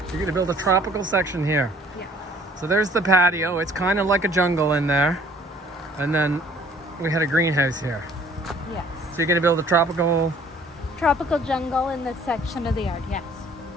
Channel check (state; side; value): normal; both; correlation 0.56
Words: You're going to build a tropical section here. Yeah. So there's the patio. It's kind of like a jungle in there. And then we had a greenhouse here. Yes. So you're going to build a tropical jungle in this section of the yard, yes.